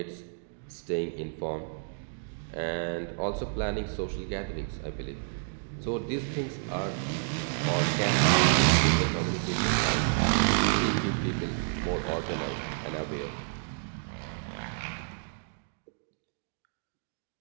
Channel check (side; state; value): left; silent; digital silence